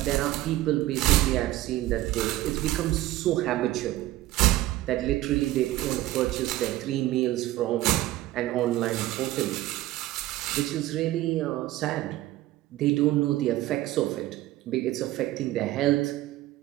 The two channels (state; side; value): quieter; left; 16.1 dB